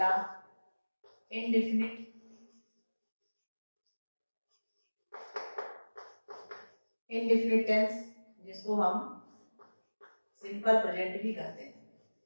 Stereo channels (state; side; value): inverted; both; correlation -1.00